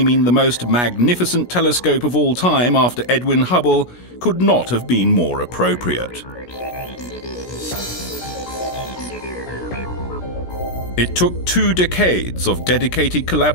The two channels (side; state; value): right; late; 16 ms